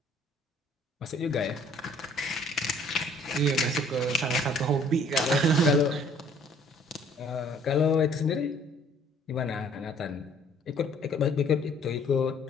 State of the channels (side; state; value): both; normal; correlation 0.58